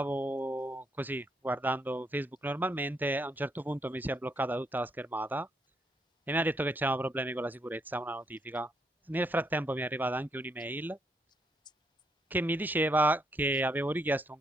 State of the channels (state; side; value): normal; both; correlation 0.75